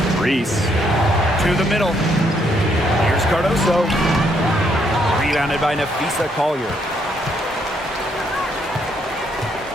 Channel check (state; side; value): normal; both; correlation 0.72